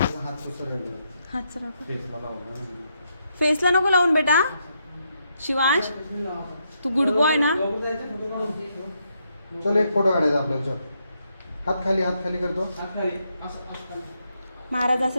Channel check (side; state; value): both; inverted; correlation -0.79